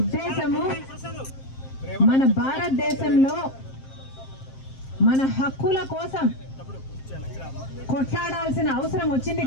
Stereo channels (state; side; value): late; right; 7.6 ms